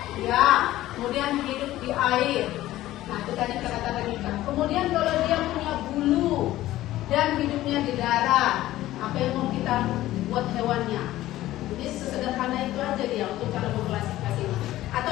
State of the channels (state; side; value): quieter; right; 15.2 dB